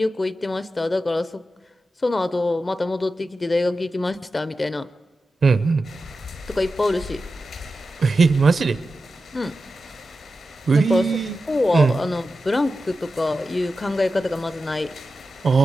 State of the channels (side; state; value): both; normal; correlation 0.91